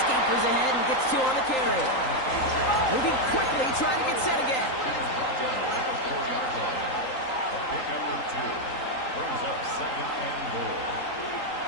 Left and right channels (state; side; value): late; right; 3.8 ms